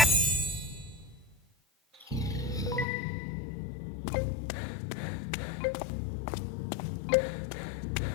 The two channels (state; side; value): drops out; right; at 2.9 s